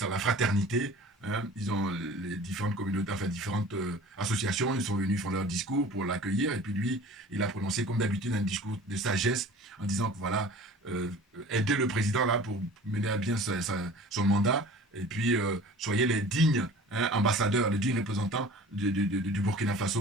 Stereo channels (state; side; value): normal; both; correlation 0.43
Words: la fraternité. Hein. Ils ont les différentes communautés, enfin différentes associations, ils sont venus, ils font leur discours pour l'accueillir, et puis lui, il a prononcé comme d'habitude un discours de sagesse en disant que voilà, aider le président là pour mener à bien son mandat, et puis soyez les dignes hein, ambassadeurs, les dignes représentants du Burkina